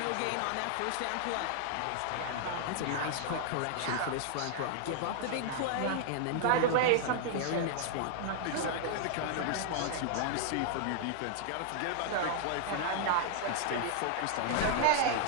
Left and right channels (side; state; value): both; different; correlation 0.00